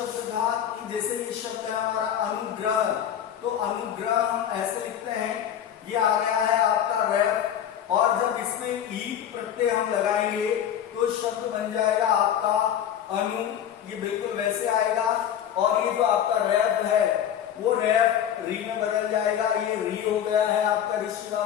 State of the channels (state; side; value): quieter; right; 9.7 dB